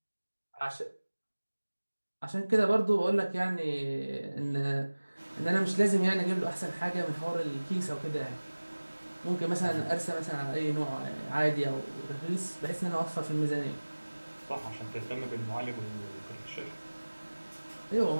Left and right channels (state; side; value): inverted; both; correlation -1.00